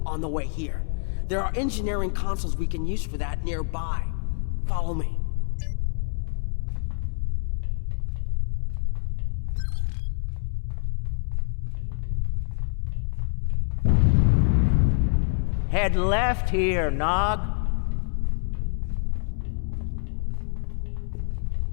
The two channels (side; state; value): right; silent; 61 dB below the other